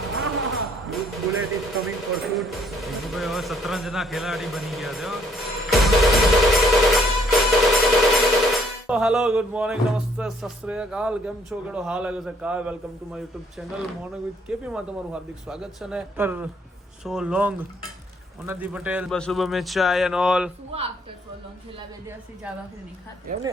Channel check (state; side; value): normal; both; correlation 0.65